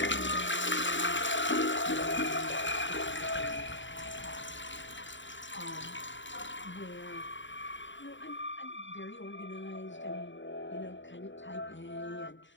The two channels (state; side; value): late; right; 0.54 ms